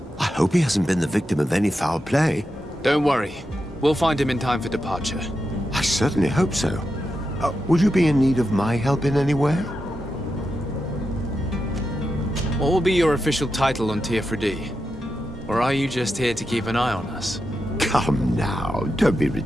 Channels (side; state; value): both; normal; correlation 0.88